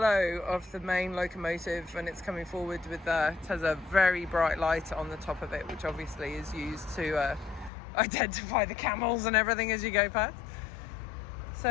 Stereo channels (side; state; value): right; drops out; at 7.7 s